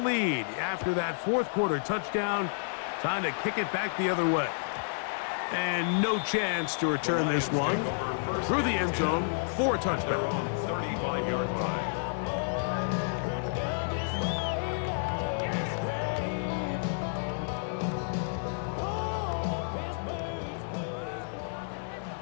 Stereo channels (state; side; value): silent; right; 57 dB below the other